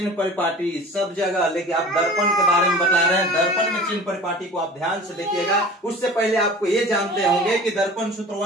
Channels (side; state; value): both; normal; correlation 0.41